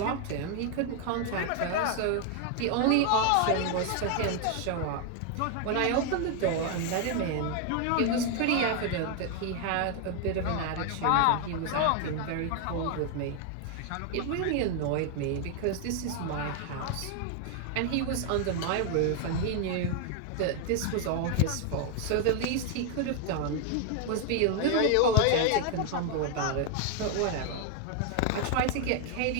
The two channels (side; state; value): both; different; correlation 0.01